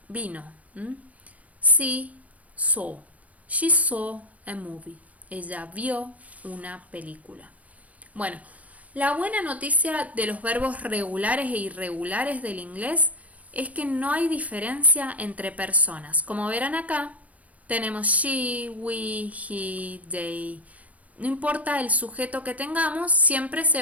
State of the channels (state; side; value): late; left; 0.068 ms